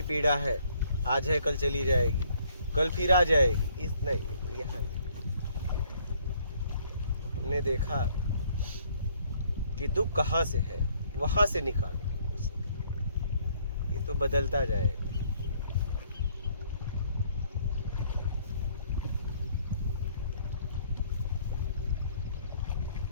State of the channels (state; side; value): inverted; both; correlation -0.64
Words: पीड़ा है, आज है कल चली जाएगी, कल फिर आ जाएगी, इस नहीं, यहाँ नहीं। हमने देखा कि दुख कहाँ से है, वहां से निकालो, ये तो बदलता जाएगा।